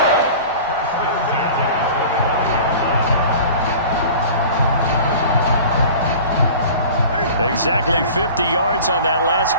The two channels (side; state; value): both; inverted; correlation -0.40